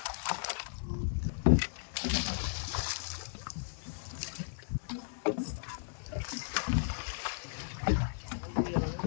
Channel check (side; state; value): right; silent; digital silence